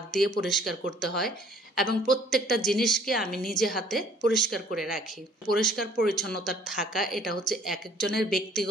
দিয়ে পরিষ্কার করতে হয়। এবং প্রত্যেকটা জিনিসকে আমি নিজে হাতে পরিষ্কার করে রাখি। পরিষ্কার পরিচ্ছন্নতা থাকা এটা হচ্ছে এক একজনের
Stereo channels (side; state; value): both; normal; correlation 0.57